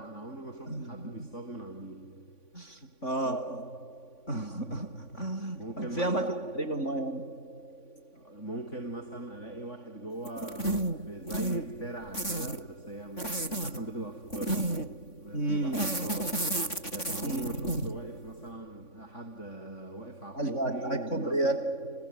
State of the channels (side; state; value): right; late; 3.5 ms